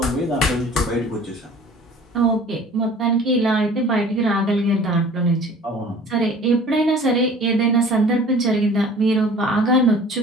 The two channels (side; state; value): both; normal; correlation 0.47